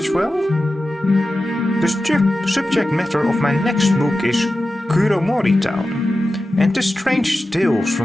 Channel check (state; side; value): normal; both; correlation 0.93